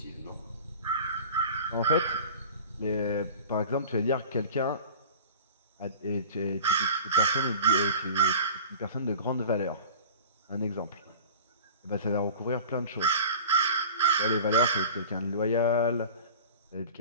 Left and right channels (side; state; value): both; inverted; correlation -0.39